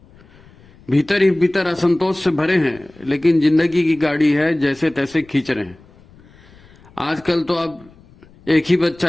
भीतर ही भीतर असंतोष से भरे हैं, लेकिन जिंदगी की गाड़ी है जैसे तैसे खींच रहे हैं। आजकल तो अब एक ही बच्चा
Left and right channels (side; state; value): left; noise; rumble, 26 dB below the sound